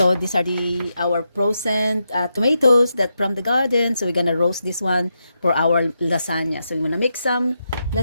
these are our frozen tomatoes that from the garden. So we're gonna roast this one for our lasagna. So we're gonna make some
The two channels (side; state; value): both; inverted; correlation -0.85